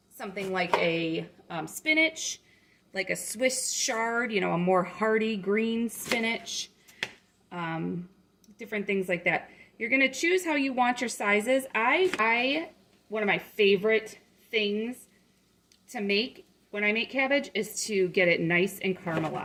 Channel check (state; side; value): identical; both; correlation 1.00